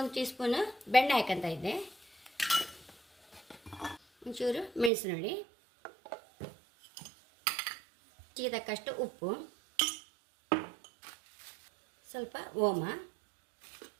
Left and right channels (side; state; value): left; drops out; at 4.9 s